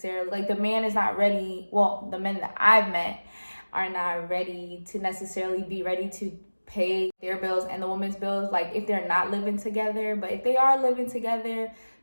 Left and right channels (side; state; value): both; inverted; correlation -1.00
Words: like the man is not ready, well, the men that I've met are not ready to necessarily be ready to pay their bills and the woman's bills, like if they're not living together. But if they are living together,